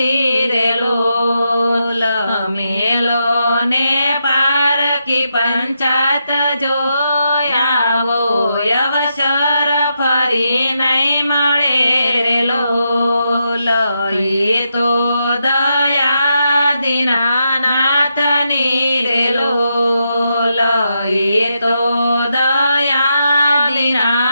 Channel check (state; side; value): inverted; both; correlation -0.83